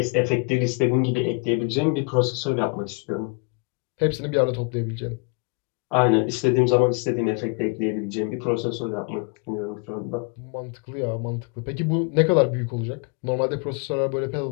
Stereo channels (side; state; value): right; quieter; 32.5 dB